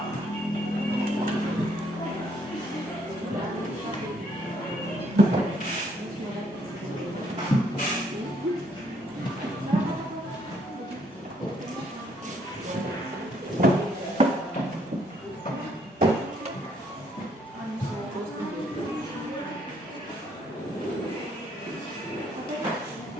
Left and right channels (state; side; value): normal; both; correlation 0.69